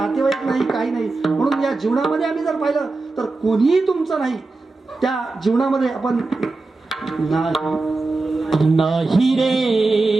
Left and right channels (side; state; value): left; quieter; 3.5 dB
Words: नाही, काही नाही. म्हणून या जीवनामध्ये आम्ही जर पाहिलं तर कोणीही तुमचं नाही. त्या जीवनामध्ये आपण नाही रे